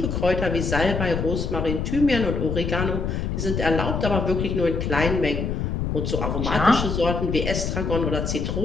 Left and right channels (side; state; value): left; noise; rumble, 1 dB below the sound